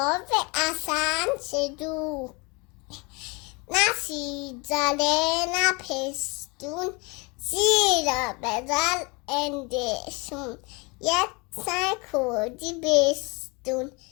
اصلا چدو، نه سیزده نه پستون، زیرا بزن اندشون. یک سر کردی بستون،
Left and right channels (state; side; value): quieter; right; 28.7 dB